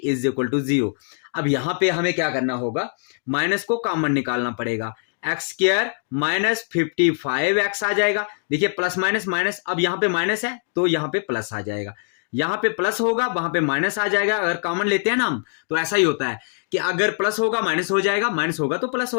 is equal to 0। अब यहां पे हमें क्या करना होगा, माइनस को कॉमन निकालना पड़ेगा, एक्स स्क्वायर माइनस 55x आ जाएगा। देखिए प्लस माइनस माइनस, अब यहां पे माइनस है तो यहां पे प्लस आ जाएगा, यहां पे प्लस होगा वहां पे माइनस आ जाएगा। अगर कॉमन लेते हैं ना हम तो ऐसा ही होता है कि अगर प्लस होगा माइनस हो जाएगा, माइनस होगा तो प्लस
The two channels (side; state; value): right; silent; digital silence